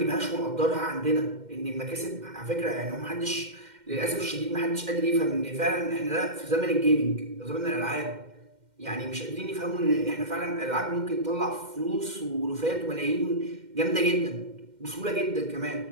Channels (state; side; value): late; left; 2.1 ms